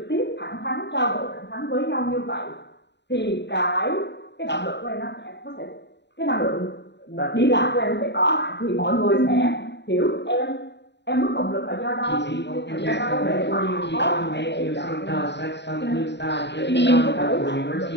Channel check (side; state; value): right; late; 0.51 ms